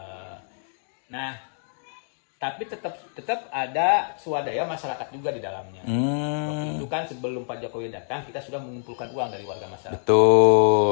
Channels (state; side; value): silent; right; digital silence